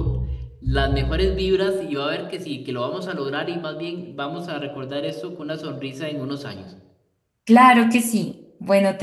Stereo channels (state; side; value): identical; both; correlation 1.00